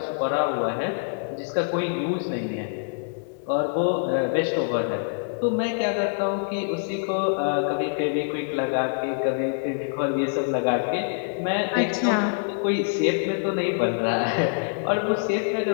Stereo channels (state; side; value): silent; right; digital silence